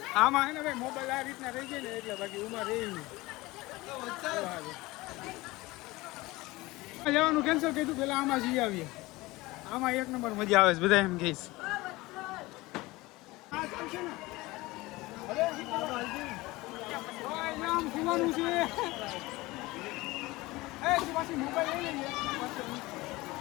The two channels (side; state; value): right; quieter; 20.7 dB